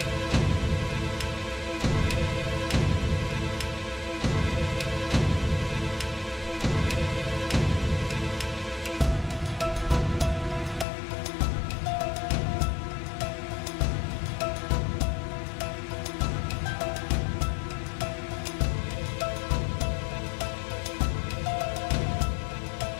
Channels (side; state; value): right; drops out; at 10.9 s